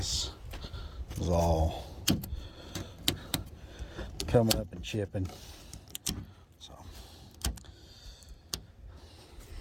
is all coming up and chipping. So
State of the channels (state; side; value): identical; both; correlation 1.00